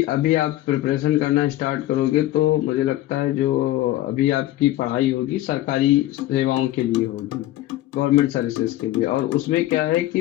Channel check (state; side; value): quieter; right; 15.3 dB